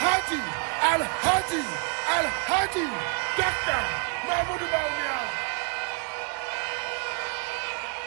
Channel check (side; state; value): left; quieter; 34.3 dB